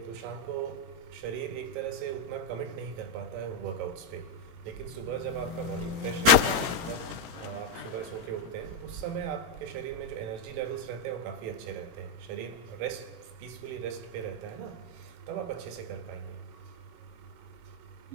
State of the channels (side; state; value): left; late; 17 ms